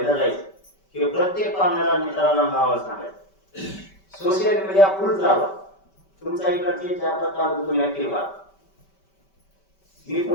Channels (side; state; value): right; late; 5.2 ms